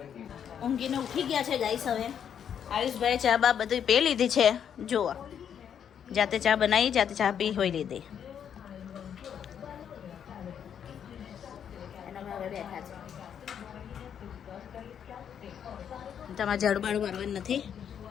ઊંઘીને ઉઠી ગયા છે ગાઈસ હવે આયુષભાઈ ચા બા બધું પી લીધી છે જુઓ જાતે ચા બનાવી જાતે ચા પી હોઈ લીધી એના હવે બેઠા છે તમારે ઝાડુ બાડુ મારવાનું નથી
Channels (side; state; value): right; quieter; 8.5 dB